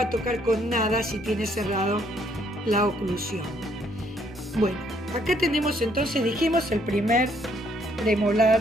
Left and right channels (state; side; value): normal; both; correlation 0.68